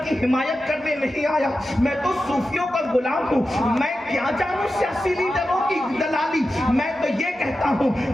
کی حمایت کرنے نہیں آیا. میں تو صوفیوں کا غلام ہوں, میں کیا جانوں سیاسی لیڈروں کی دلالی. میں تو یہ کہتا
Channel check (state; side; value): normal; both; correlation 0.92